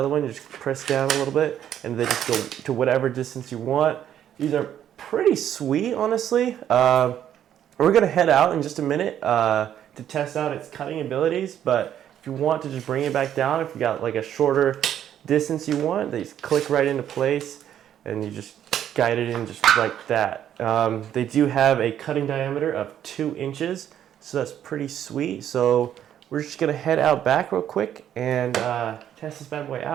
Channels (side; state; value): left; quieter; 10.3 dB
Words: one. You just press down a little bit, and then just go to whatever distance you want. These are pretty sweet, honestly. We're going to head out in just a minute to test out its cutting abilities, but if you want to just bring it back down, if you got like a shorter distance you want, they just click right into place and you just guide it in just like that. They do have a cutting diameter of 2 inches, so that's pretty sweet. So we're just going to head out back real quick and test this bad boy